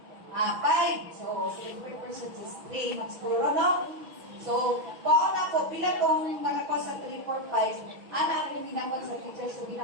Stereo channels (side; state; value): left; late; 6.1 ms